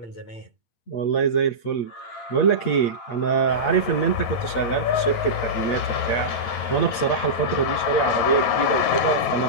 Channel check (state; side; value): late; right; 8.5 ms